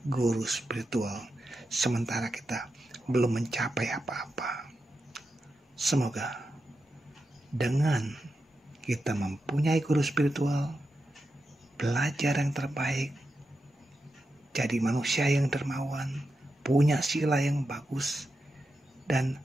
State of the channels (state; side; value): normal; both; correlation 0.88